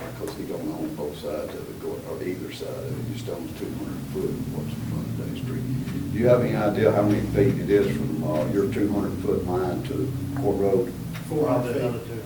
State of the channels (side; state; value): both; identical; correlation 1.00